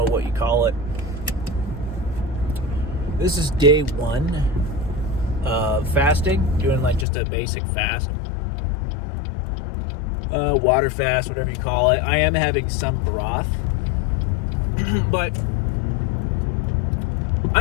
what you call it. This is day 1 of fasting, doing like just a basic fast, water fast, whatever you call it. I am having some broth, but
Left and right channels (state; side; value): drops out; right; at 7.1 s